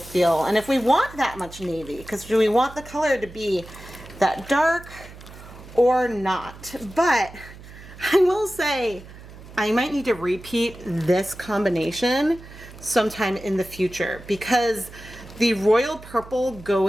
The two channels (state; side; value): noise; right; hum, 17 dB below the sound